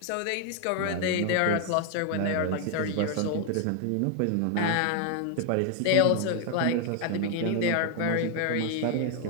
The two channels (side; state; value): both; different; correlation 0.00